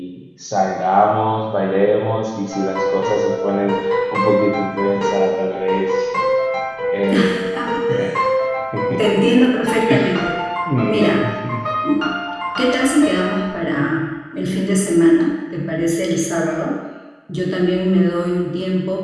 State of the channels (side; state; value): both; identical; correlation 1.00